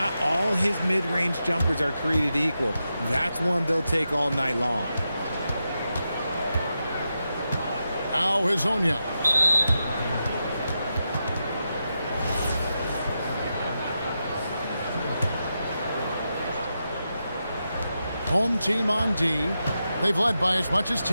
all his mid-range jumpers are created equal. That's one they'll take all night long. Now Hazanya. Home team on D. They've led by as much as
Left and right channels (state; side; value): inverted; both; correlation -0.88